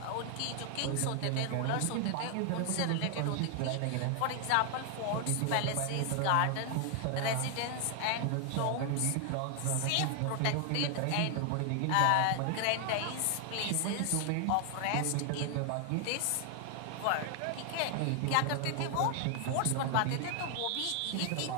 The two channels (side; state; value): both; different; correlation 0.00